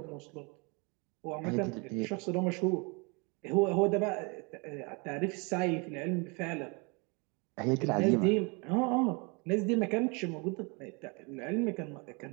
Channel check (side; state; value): left; quieter; 30.9 dB